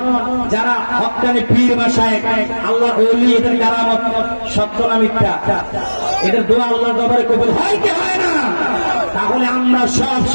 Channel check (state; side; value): inverted; both; correlation -1.00